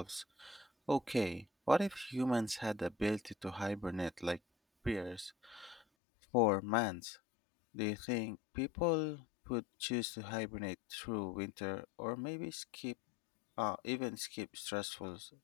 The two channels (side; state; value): right; drops out; at 5.9 s